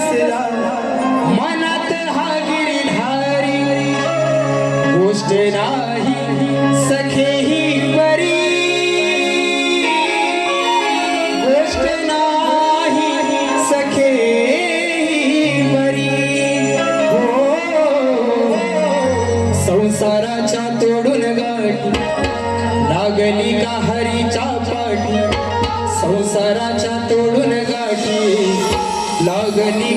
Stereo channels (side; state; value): both; identical; correlation 1.00